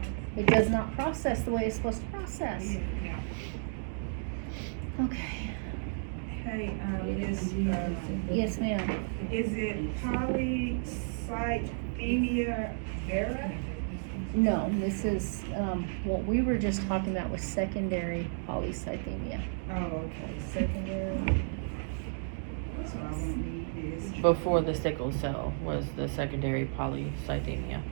it does not process the way it's supposed to process. Yeah. Okay. Hey, Miss, Yes, ma'am. is it polycythemia vera? No, this is, what we were just talking about was secondary polycythemia. Oh, okay, secondary. So I won't need this. Before the sickle cell was the secondary polycythemia.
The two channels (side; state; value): left; silent; digital silence